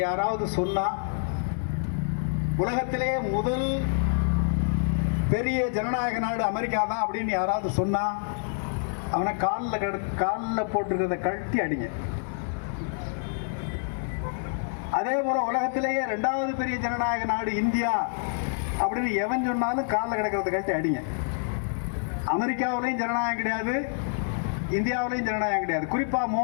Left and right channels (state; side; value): silent; right; 60 dB below the other